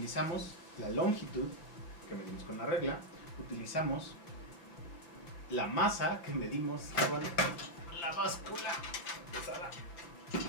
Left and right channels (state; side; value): late; right; 5.8 ms